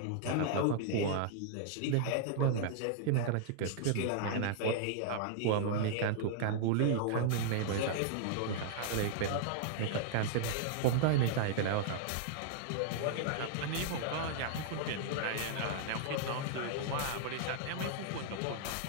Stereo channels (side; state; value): both; different; correlation -0.01